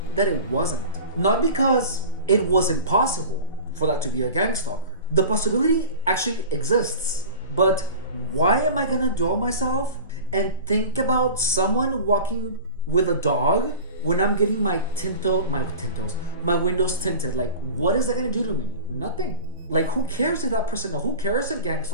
that it wasn't. Not because it was impossible for that to be a gang stalker. The possibility actually exists. But why am I gonna dull myself and think about someone walking with a dog when I'm getting my windows tinted? Like, what is that gonna do to me? Nothing. Like, who cares if that person knows? Who cares if gang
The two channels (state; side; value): inverted; both; correlation -0.36